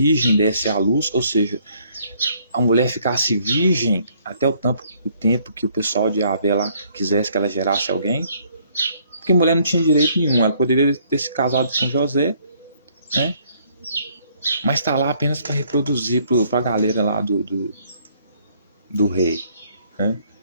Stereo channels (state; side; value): inverted; both; correlation -0.65